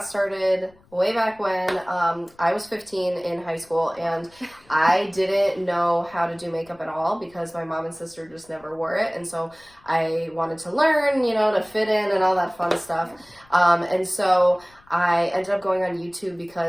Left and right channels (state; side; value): noise; left; rumble, 29 dB below the sound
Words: started way back when I was 15 in high school, and I didn't know how to do makeup at all because my mom and sister just never wore it. And so I wanted to learn, to fit in and all that fun stuff. And so I ended up going on YouTube